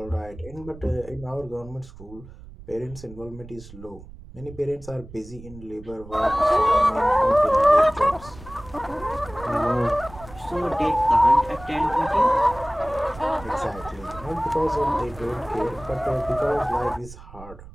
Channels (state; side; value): noise; right; rumble, 17 dB below the sound